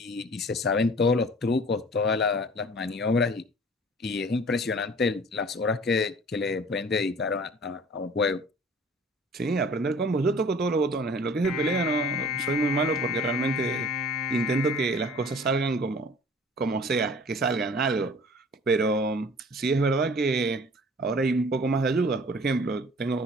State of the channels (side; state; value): both; normal; correlation 0.48